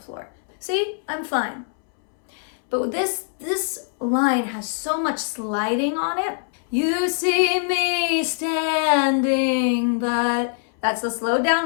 See, I'm fine. But this line has so much sliding on it. You see me standing, but that's the slowed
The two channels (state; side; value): silent; right; 63 dB below the other